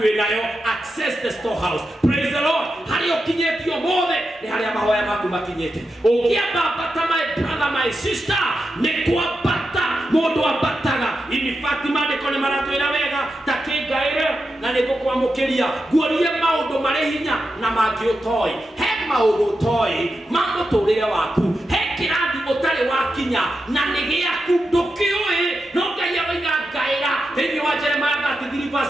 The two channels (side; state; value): both; normal; correlation 0.88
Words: wĩnayo, access the storehouse. Praise the Lord. Harĩa ũkinyĩtio mothe nĩ harĩa mahoya maku makinyĩte. Ũngĩamba ambata my brother, my sister, nĩ kwambata mũndũ ambataga. In fact maandĩko nĩ maratwĩra wega ta kĩngaĩre na nĩ ngũkwamũkĩria nguorie maũndũ marĩ hinya na mangĩ ũtoĩ. He maũndũ ũtoĩ ma mũtũrĩre waku, he kĩrathi ũtarĩ wakinya na nĩ gĩaku ndũkĩũĩ, no Ngai aroiga ngaĩra thĩinĩ wa Jeremiah